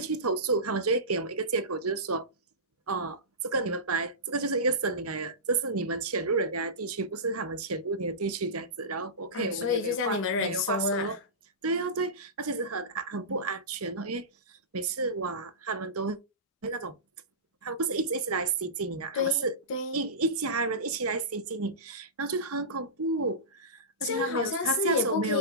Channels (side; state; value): both; normal; correlation -0.20